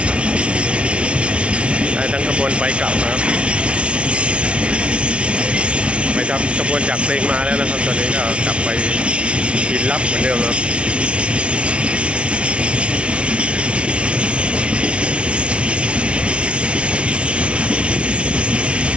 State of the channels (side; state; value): left; late; 0.060 ms